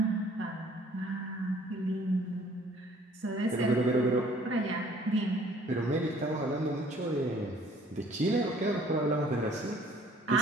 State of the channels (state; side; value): normal; both; correlation 0.57